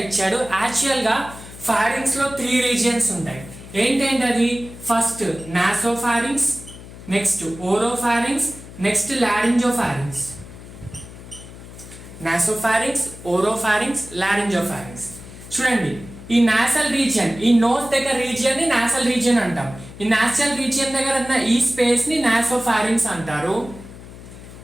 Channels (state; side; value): noise; left; hum, 16 dB below the sound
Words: ఇచ్చాడు. యాక్చువల్గా ఫారింగ్స్లో 3 రీజియన్స్ ఉంటాయి. ఏంటంటే అది first nasopharynx, next oropharynx, next laryngopharynx. Nasopharynx, oropharynx, laryngopharynx. చూడండి ఈ నాసల్ రీజియన్, ఈ నోస్ దగ్గర రీజియన్ ని నాసల్ రీజియన్ అంటాం. ఈ నాసల్ రీజియన్ దగ్గర ఉన్న ఈ స్పేస్ ని నాసోఫారింగ్స్ అంటారు.